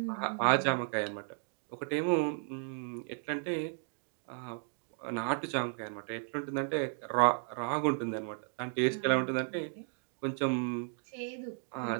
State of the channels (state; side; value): silent; left; 55 dB below the other